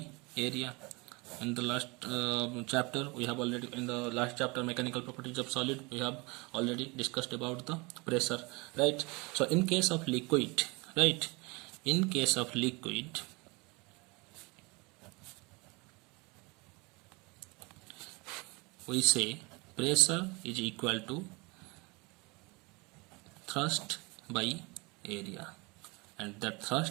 area. In the last chapter we have already, in the last chapter mechanical properties of solid, we have already discussed about the pressure, right? So in case of liquid, right, in case of liquid, we say pressure is equal to thrust by area, and that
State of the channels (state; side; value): quieter; left; 26.8 dB